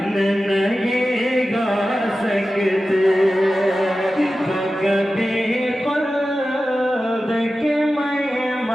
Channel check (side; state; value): both; normal; correlation 0.94